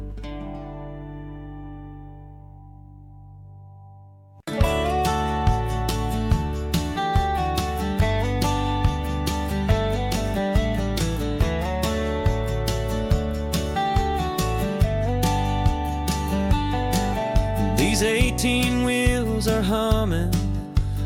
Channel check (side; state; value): both; identical; correlation 1.00